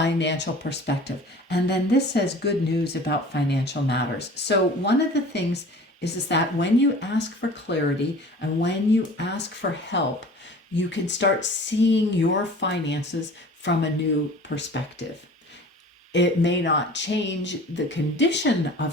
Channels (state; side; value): normal; both; correlation 0.43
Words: perspective. And then this says good news about financial matters. So one of the things is that when you ask for clarity and when you ask for help, you can start seeing your finances from a new perspective. It may not change the condition